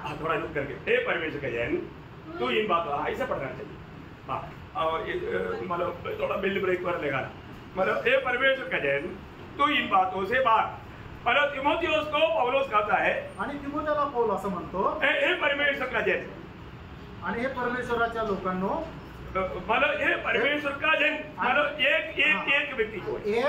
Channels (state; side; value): identical; both; correlation 1.00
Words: थोड़ा रुक करके, हे परमेश्वर का जन तू इन बातों, ऐसा पढ़ना चाहिए। मतलब थोड़ा बिल्ड ब्रेक पर लगाना, मतलब हे परमेश्वर का जन तू इन बातों से भाग। मतलब तिमोथियोस को पौलुस कहता है, आणि तिमोथेला पौल असं म्हणतो, हे परमेश्वर का जन, आणि हे परमेश्वराच्या लोकांनो, मतलब हे परमेश्वर का जन मतलब एक व्यक्ती को, हे